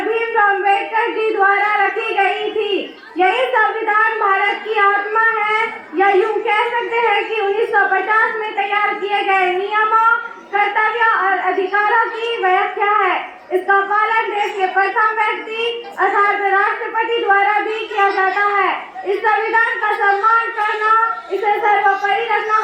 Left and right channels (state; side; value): identical; both; correlation 1.00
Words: भीमराव अम्बेडकर जी द्वारा रखी गई थी। यही संविधान भारत की आत्मा है, या यूं कह सकते हैं कि 1950 में तैयार किए गए नियमों, कर्तव्यों और अधिकारों की व्याख्या है। इसका पालन देश के प्रथम व्यक्ति अर्थात राष्ट्रपति द्वारा भी किया जाता है। इस संविधान का सम्मान करना, इसे सर्वोपरि रखना